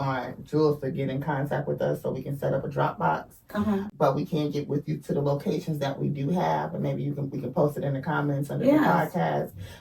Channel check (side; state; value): both; identical; correlation 1.00